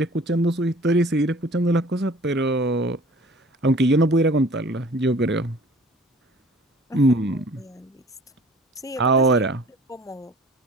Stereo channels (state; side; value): normal; both; correlation 0.49